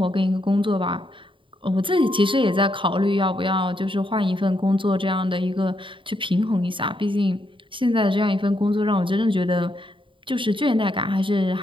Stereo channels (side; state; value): left; late; 0.25 ms